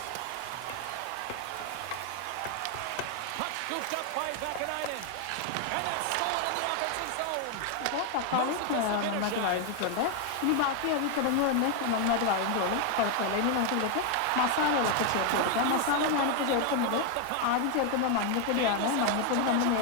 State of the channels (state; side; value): different; both; correlation 0.01